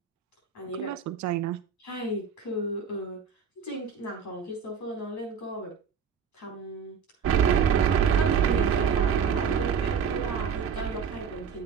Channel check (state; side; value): quieter; left; 6.7 dB